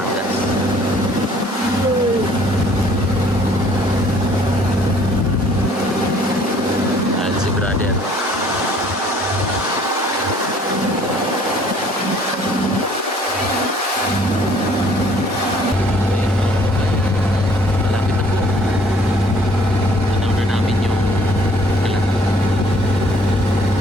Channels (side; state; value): both; normal; correlation 0.58